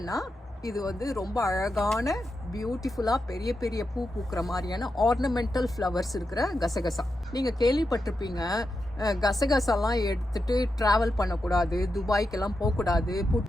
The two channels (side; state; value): both; normal; correlation 0.87